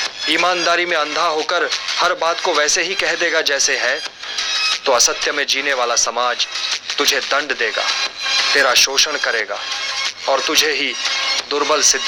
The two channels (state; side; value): identical; both; correlation 1.00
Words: ईमानदारी में अंधा होकर हर बात को वैसे ही कह देगा जैसे है, तो असत्य में जीने वाला समाज तुझे दंड देगा, तेरा शोषण करेगा और तुझे ही दुर्बल सिद्ध